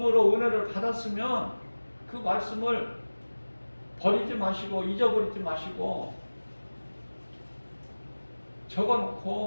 은혜를 받았으면 그 말씀을 버리지 마시고 잊어버리지 마시고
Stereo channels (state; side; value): inverted; both; correlation -1.00